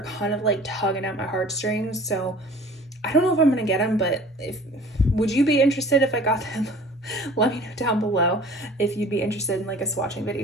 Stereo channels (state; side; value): normal; both; correlation 0.46